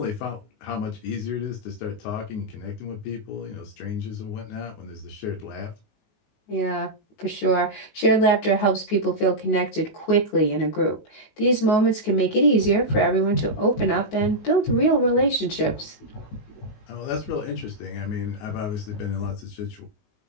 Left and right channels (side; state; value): right; late; 19 ms